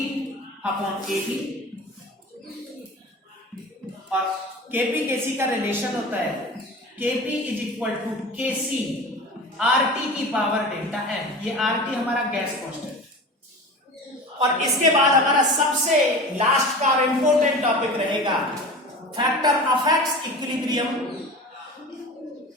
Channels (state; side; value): normal; both; correlation 0.34